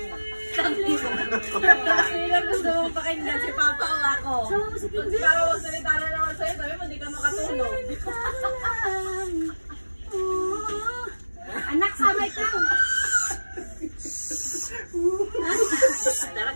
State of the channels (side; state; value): both; inverted; correlation -1.00